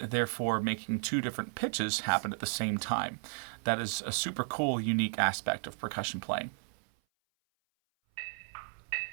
making 2 different pitches happen at the same time. That is a super cool, unique aspect of percussion playing.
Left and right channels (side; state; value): left; silent; 55 dB below the other